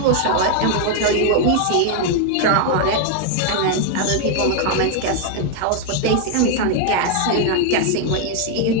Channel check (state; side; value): different; both; correlation 0.00